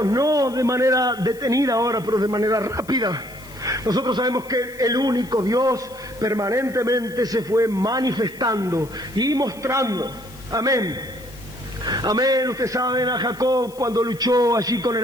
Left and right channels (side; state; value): left; noise; hiss, 22 dB below the sound